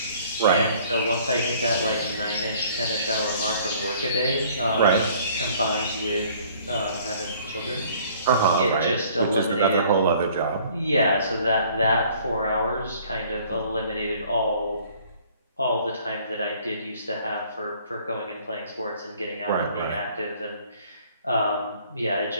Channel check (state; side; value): inverted; both; correlation -0.56